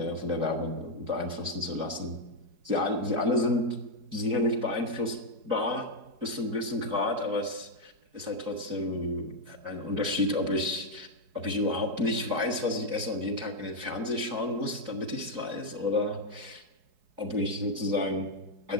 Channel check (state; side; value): late; left; 4.7 ms